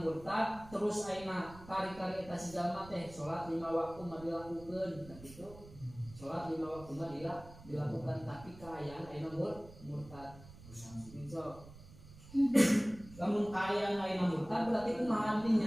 murtad terus ayeuna kari-kari eta si jalma teh salat 5 waktu mah dilakukeun kitu sholat 5 waktu mah dilakukan tapi kaayaan ayeuna murtad so lamun kaayaan ayeuna murtad berarti kumaha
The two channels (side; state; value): right; noise; rumble, 18 dB below the sound